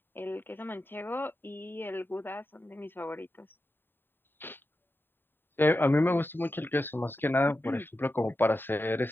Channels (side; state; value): right; late; 0.097 ms